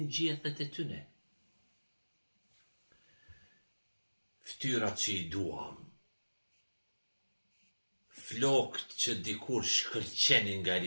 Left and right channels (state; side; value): inverted; both; correlation -1.00